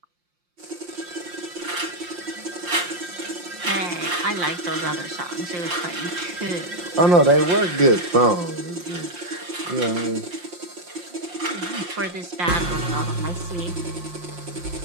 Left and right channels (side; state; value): left; late; 5.7 ms